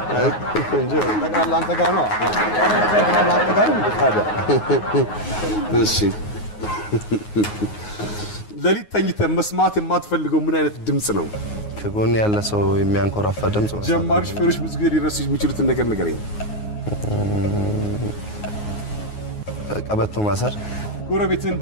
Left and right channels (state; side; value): late; right; 9.5 ms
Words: እንጂ ተቃላ አንተ ጋር ነው ታዲያ እሺ ለሊት ተኝተህ መስማት የማትፈልገው ምን አይነት ድምጽ ነው ከጎን ያለ ሰው የሚያንኮራፋ ድምጽ ነው ጀማሪ ሹፌሮች ብዙ ጊዜ ሊረሱ የሚችሉትን ነገር ንገረኝ ቀበቶ ማሰር ጎረቤትን